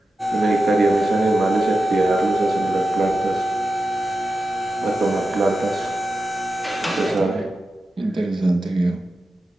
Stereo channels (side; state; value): both; normal; correlation 0.91